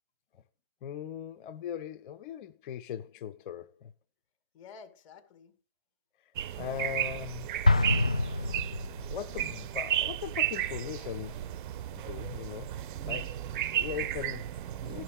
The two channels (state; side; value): inverted; both; correlation -0.50